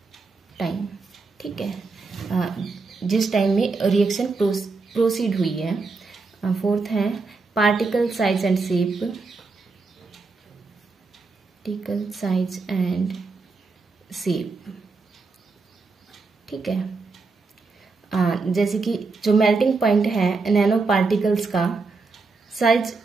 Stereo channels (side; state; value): left; quieter; 4.1 dB